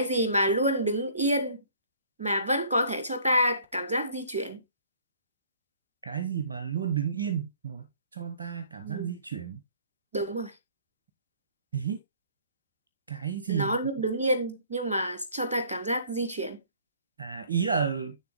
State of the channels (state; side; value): inverted; both; correlation -0.56